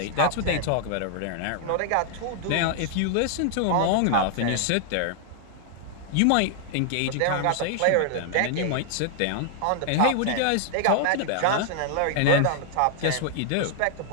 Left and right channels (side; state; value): both; different; correlation 0.00